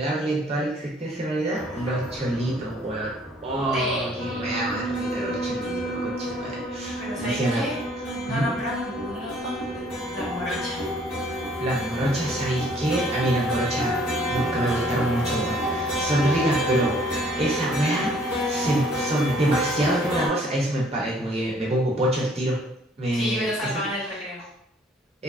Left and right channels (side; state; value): both; normal; correlation 0.60